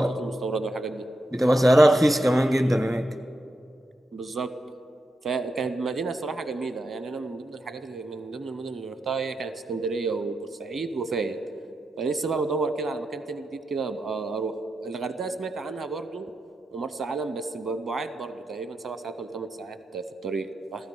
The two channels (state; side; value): normal; both; correlation 0.86